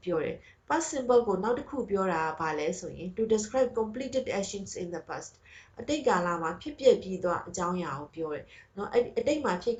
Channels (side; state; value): both; identical; correlation 1.00